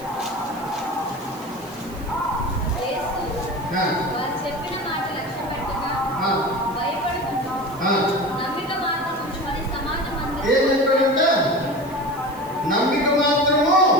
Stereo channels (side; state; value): right; noise; hiss, 22 dB below the sound